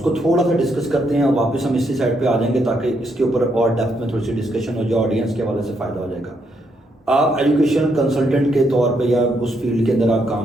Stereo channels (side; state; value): both; normal; correlation 0.77